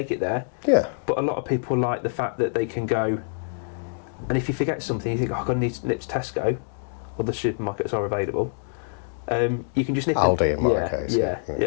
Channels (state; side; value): silent; right; digital silence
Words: it there. Yeah. But a lot of people like the fact that they can go, and if you forget something, you think, oh, I'm going to need to nip to Tesco, or the supermarkets are available. You can just nip Aldi in. in my case.